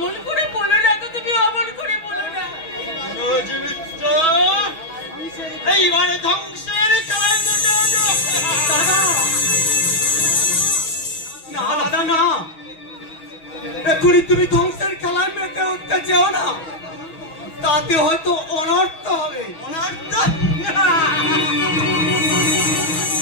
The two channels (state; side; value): late; right; 6.2 ms